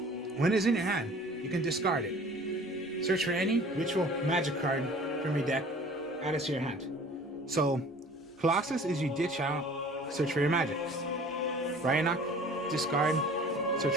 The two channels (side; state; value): both; normal; correlation 0.48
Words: when it's in your hand, you can discard it. Search for any ritual magic card from your deck, add it to your hand. So Colossus is you ditch out, search for your magic. Bryanok, discard, search